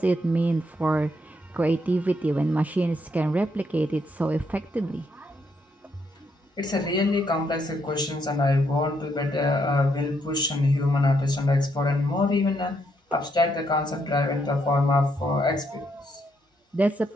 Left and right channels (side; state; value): both; normal; correlation 0.76